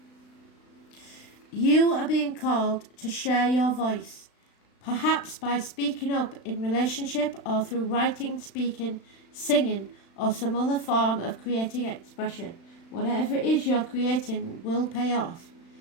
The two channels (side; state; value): right; late; 36 ms